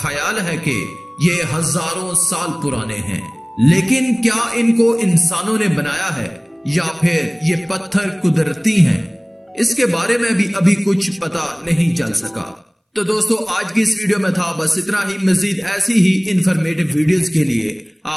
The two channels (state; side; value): identical; both; correlation 1.00